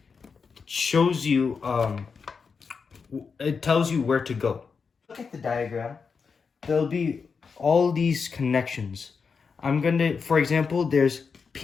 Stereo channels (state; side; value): quieter; right; 5.4 dB